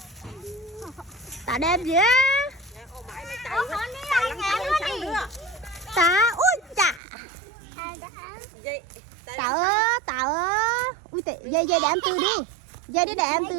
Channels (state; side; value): drops out; left; at 7.0 s